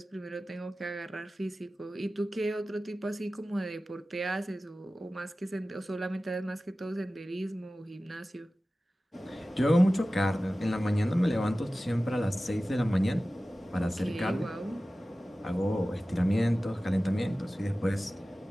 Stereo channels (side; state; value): both; normal; correlation 0.96